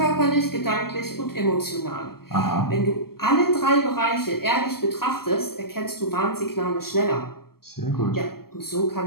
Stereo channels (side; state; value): right; late; 0.95 ms